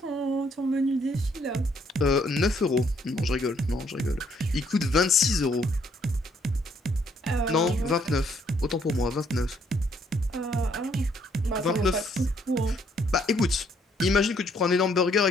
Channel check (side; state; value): both; normal; correlation 0.68